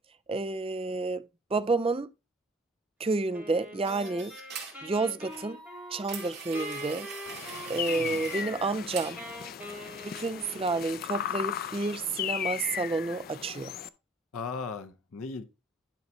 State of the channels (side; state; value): both; normal; correlation 0.53